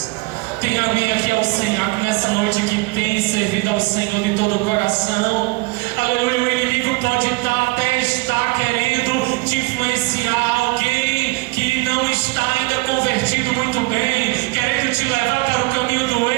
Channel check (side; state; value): left; quieter; 24.4 dB